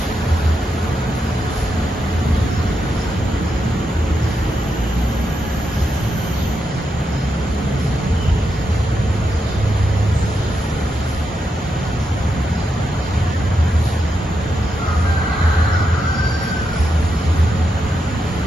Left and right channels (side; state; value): both; normal; correlation 0.84